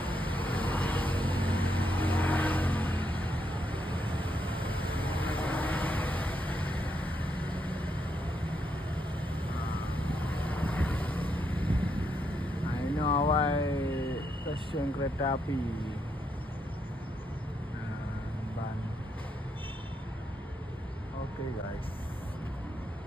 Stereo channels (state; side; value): normal; both; correlation 0.79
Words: Stasiun kereta api Ban. Oke guys,